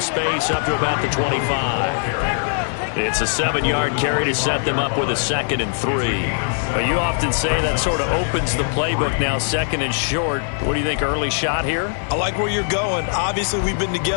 up to about the 25. It's a 7-yard carry to set them up with a 2nd and 3. But you often say that sort of opens the playbook now, 2nd and short. What do you think, early shot here? I like where you're going. Obviously, we've been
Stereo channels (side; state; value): right; silent; 65 dB below the other